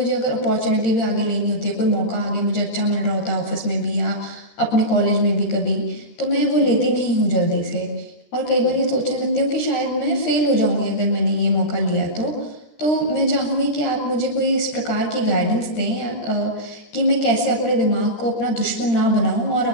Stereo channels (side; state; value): right; late; 13 ms